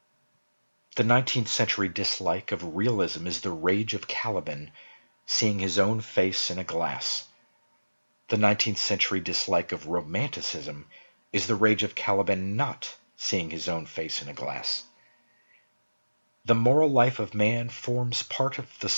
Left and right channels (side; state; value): both; inverted; correlation -1.00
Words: The 19th century dislike of realism is the rage of Caliban seeing his own face in a glass. The 19th century dislike of romanticism is the rage of Caliban not seeing his own face in a glass. The moral life of man forms part of the